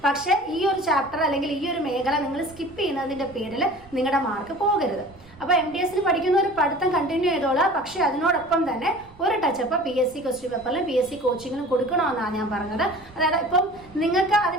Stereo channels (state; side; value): noise; right; rumble, 25 dB below the sound